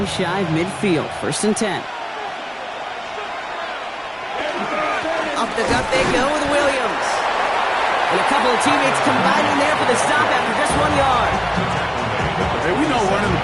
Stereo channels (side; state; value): both; identical; correlation 1.00